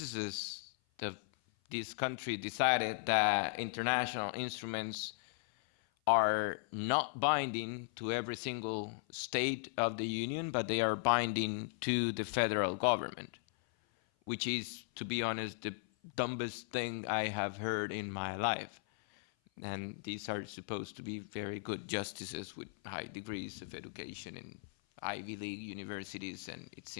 of this country decided that international instruments are not binding to every single state of the Union, but they are binding to the federal government, which is, to be honest, the dumbest thing I have heard in my life. And these are supposed to be very good justices with high degrees of education in Ivy League universities, and it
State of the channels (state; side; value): silent; right; 53 dB below the other